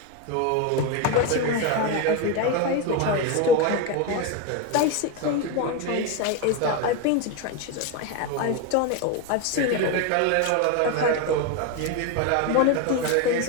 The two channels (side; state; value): both; different; correlation 0.03